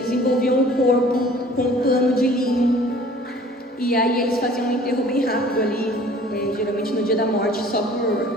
envolviam o corpo com um pano de linho e aí eles faziam um enterro bem rápido ali, geralmente no dia da morte, só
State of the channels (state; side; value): normal; both; correlation 0.50